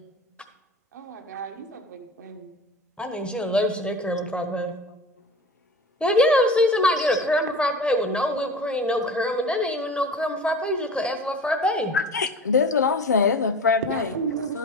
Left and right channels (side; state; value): both; normal; correlation 0.35